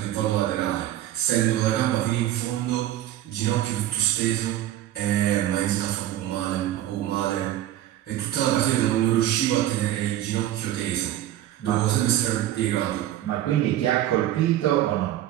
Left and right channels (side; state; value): left; quieter; 13.1 dB